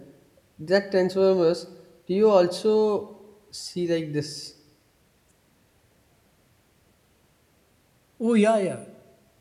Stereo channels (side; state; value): both; identical; correlation 1.00